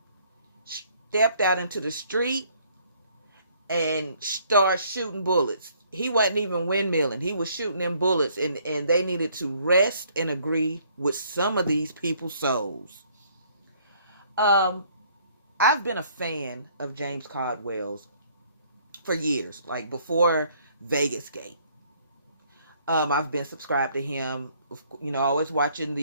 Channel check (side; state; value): both; inverted; correlation -0.63